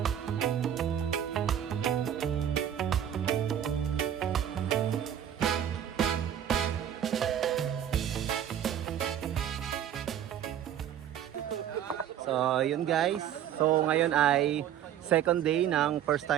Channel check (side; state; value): left; quieter; 10.0 dB